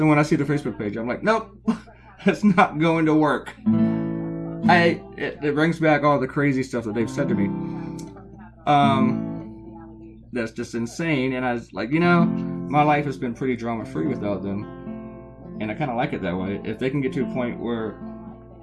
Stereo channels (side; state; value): both; identical; correlation 1.00